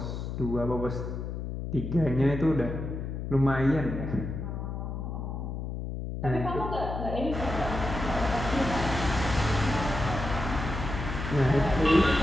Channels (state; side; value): noise; left; hum, 5 dB below the sound